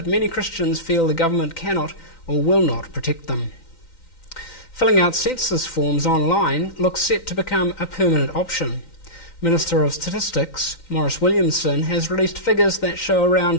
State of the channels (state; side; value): late; right; 3.9 ms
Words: many Christians feel the government cannot or will not protect them. Filling out census forms online looks set to become a permanent option. Minister of Statistics, Maurice Williamson, has released figures that show